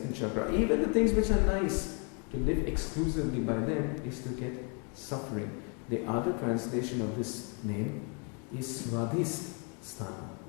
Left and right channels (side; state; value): right; quieter; 35.8 dB